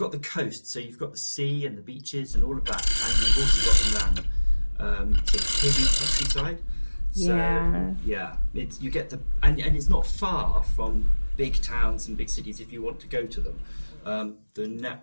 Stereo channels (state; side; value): inverted; both; correlation -1.00